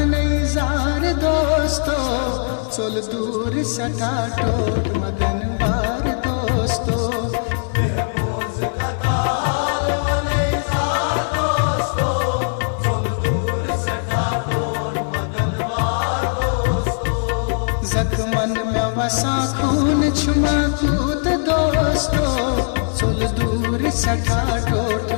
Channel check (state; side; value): silent; right; digital silence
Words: दोस्तो चल दूर सटा टोट मदन वार दोस्तो जख्मन में वसा खून छुमा कूद दोस्तो चल दूर सटा टोट